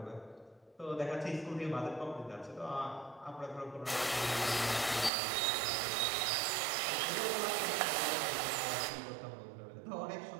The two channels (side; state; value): left; drops out; at 5.1 s